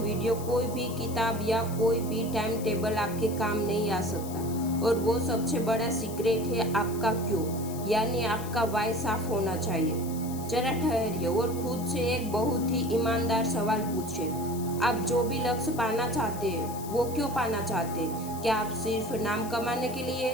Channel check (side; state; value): left; noise; hiss, 14 dB below the sound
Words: कोई भी किताब या कोई भी टाइम टेबल आपके काम नहीं आ सकता। और वो सबसे बड़ा सीक्रेट है आपका क्यों, यानी आपका वाई साफ होना चाहिए। जरा ठहरिए और खुद से एक बहुत ही ईमानदार सवाल पूछिए। आप जो भी लक्ष्य पाना चाहते हैं वो क्यों पाना चाहते हैं? क्या आप सिर्फ नाम कमाने के लिए